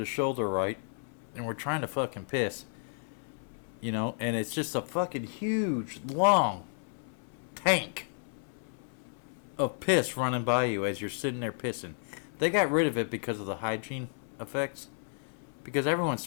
shoulder, right? And we're trying to fucking piss. You know? And it's just a fucking huge, long tank of piss running by you as you're sitting there pissing. They got rid of it because of the hygiene effects. Because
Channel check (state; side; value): silent; right; 56 dB below the other